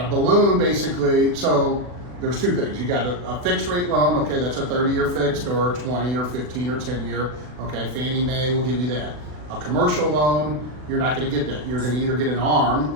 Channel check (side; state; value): left; late; 40 ms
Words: a balloon basically, so there's 2 things. You got a fixed rate loan, okay, that's a 30-year fixed, or 20 or 15 or 10-year, okay? Fannie Mae will give you that. A commercial loan, you're not gonna get that. You're gonna either get an ARM,